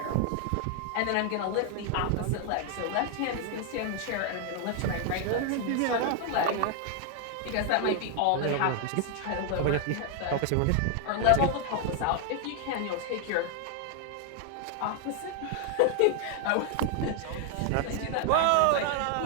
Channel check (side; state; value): both; different; correlation 0.00